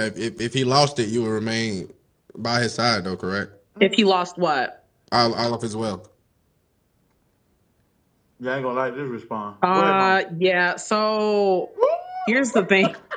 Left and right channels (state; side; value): identical; both; correlation 1.00